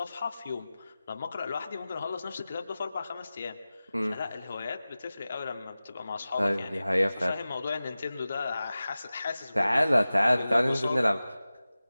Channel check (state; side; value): inverted; both; correlation -0.96